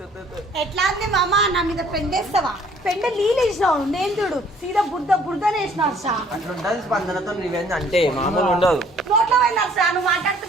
ఎట్లా అంది మామ, నా మీద పెండేస్తావా? పెండ నీళ్ళు వేసినావు, నేను చూడు సీదా బురదనే వేసినావు సా. అట్లుంటది స్పందనతో రివెంజ్ అంటే మామూలు ఉండదు. నోట్లో పోయినా సా, నువ్వు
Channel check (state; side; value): normal; both; correlation 0.58